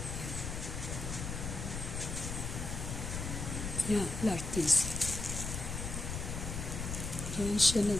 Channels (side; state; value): left; noise; rumble, 4 dB below the sound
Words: Yan, lartise. Diyan siya